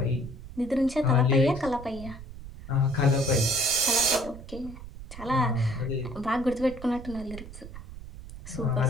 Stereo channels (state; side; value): noise; right; rumble, 13 dB below the sound